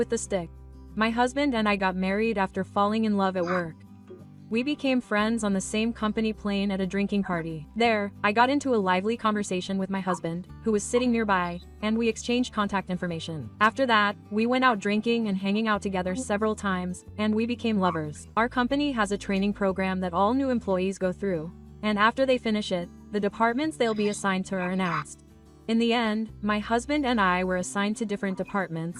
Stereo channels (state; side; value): identical; both; correlation 1.00